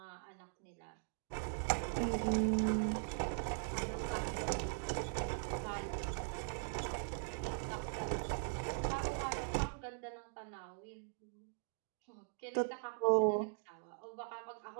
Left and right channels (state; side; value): silent; left; digital silence